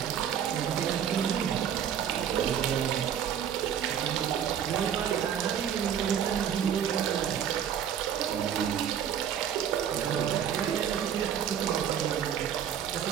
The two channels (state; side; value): quieter; left; 9.0 dB